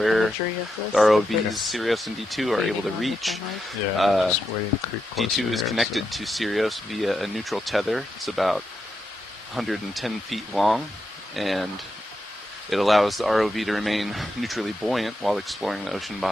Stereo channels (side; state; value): both; normal; correlation 0.85